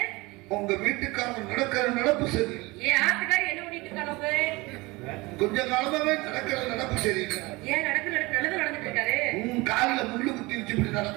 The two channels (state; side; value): quieter; left; 23.2 dB